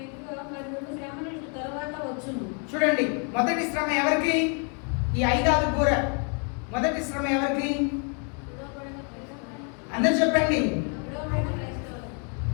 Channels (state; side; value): quieter; right; 39.5 dB